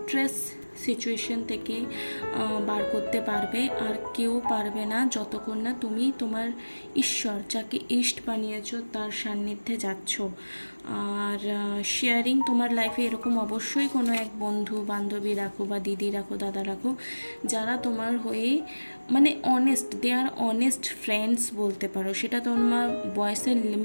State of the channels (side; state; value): both; inverted; correlation -1.00